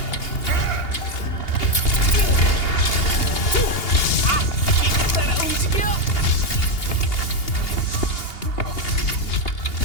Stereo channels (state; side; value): late; right; 2.8 ms